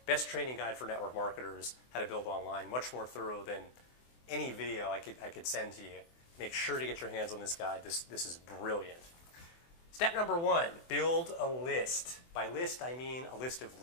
best training guide for network marketers, how to build online, much more thorough than any video I could send to you. Make sure to get your hands on this guide. This is brilliant. Step number one, build a list. By list, I mean a list of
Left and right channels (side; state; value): right; late; 24 ms